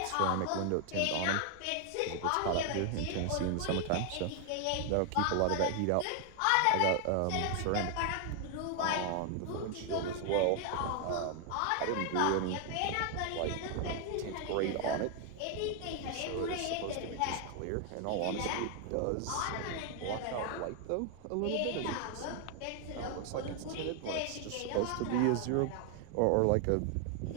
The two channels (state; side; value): different; both; correlation 0.00